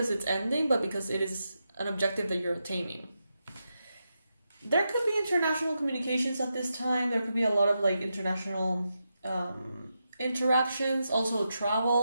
it's ending, but because it is an objective that you're attaining. There could be international communications at this time. There could be a lot of like international interactions, also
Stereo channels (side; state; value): both; inverted; correlation -0.87